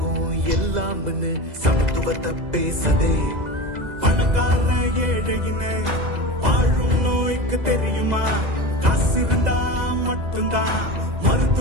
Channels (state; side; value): late; left; 2.0 ms